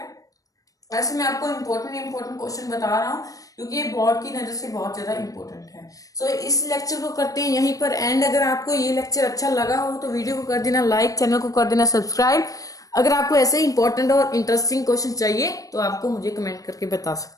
ऐसे मैं आपको इंपॉर्टेंट क्वेश्चन बता रहा हूँ क्योंकि ये बोर्ड की नजर से बहुत ज्यादा इंपॉर्टेंट है। सो इस लेक्चर को करते हैं यहीं पर एंड। अगर आपको ये लेक्चर अच्छा लगा हो तो वीडियो को कर देना लाइक, चैनल को कर देना सब्सक्राइब। अगर आपको ऐसे इंपॉर्टेंट और इंटरेस्टिंग क्वेश्चन चाहिए तो आपको मुझे कमेंट करके बता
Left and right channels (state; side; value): late; right; 0.17 ms